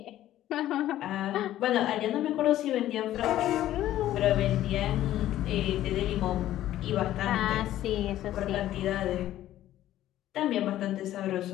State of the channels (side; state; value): right; quieter; 13.3 dB